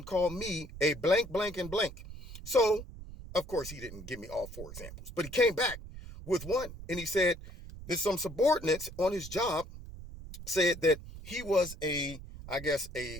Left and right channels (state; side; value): noise; right; rumble, 13 dB below the sound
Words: called me a blank, blank, and blank. So, of course, he didn't give me all 4 examples, but he came back with one. And he said there's some subordinates on his job said that he was I guess